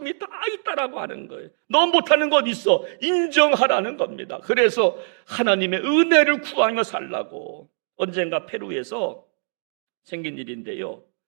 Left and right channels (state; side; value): silent; left; 64 dB below the other